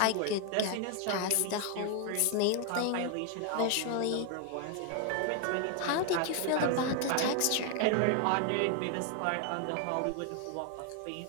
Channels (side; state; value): both; different; correlation 0.00